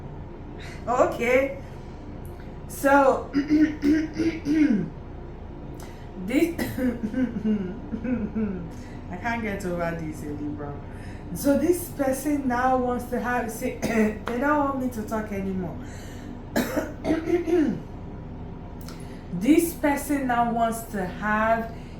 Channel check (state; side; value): identical; both; correlation 1.00